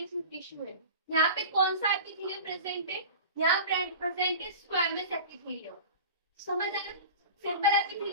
टिश्यू है, यहाँ पे कौन सा एपिथेलियम प्रेजेंट है, यहाँ प्रेजेंट है स्क्वैमस एपिथेलियम। समझ आया, सिंपल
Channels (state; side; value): inverted; both; correlation -0.35